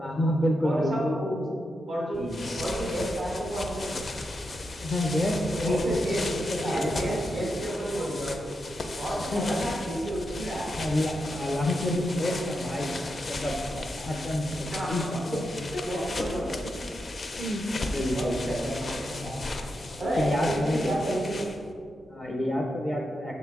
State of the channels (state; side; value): normal; both; correlation 0.86